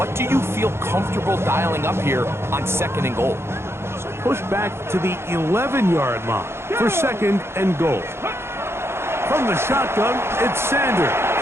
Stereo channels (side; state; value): left; late; 0.12 ms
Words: do you feel comfortable dialing up here on 2nd and goal. Push back to the 11-yard line for 2nd and goal. From the shotgun, it's Sanders.